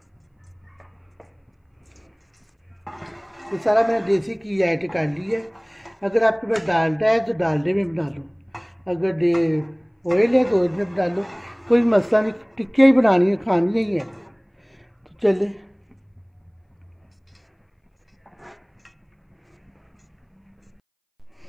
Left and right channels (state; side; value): identical; both; correlation 1.00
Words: ये सारा मैंने देसी घी ऐड कर लिया है। अगर आपके पास डालडा है तो डालडे में बना लो, अगर ऑयल है तो ऑयल में बना लो, कोई मसला नहीं। टिक्कियाँ ही बनानी है, खानी ही है। तो चले